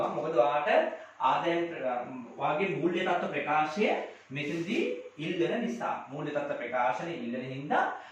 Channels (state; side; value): identical; both; correlation 1.00